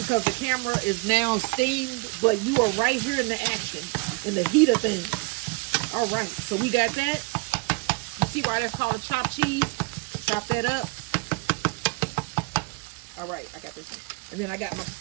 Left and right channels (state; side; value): quieter; left; 29.8 dB